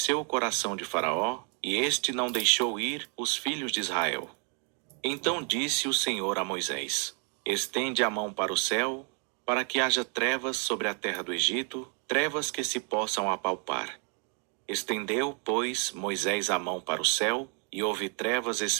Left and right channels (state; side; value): quieter; left; 38.2 dB